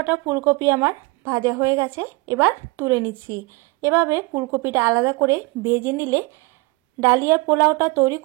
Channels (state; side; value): quieter; left; 24.4 dB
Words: ফুলকপি আমার ভাজা হয়ে গেছে, এবার তুলে নিচ্ছি। এভাবে ফুলকপিটা আলাদা করে ভেজে নিলে ডালিয়ার পোলাওটা তৈরি